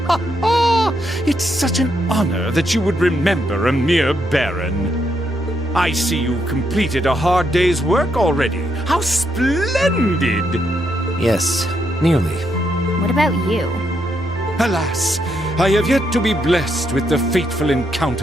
It's such an honor that you would remember a mere baron. I see you've completed a hard day's work already. How splendid! Yes, nearly. What about you? Alas, I have yet to be blessed with the fateful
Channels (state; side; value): normal; both; correlation 0.78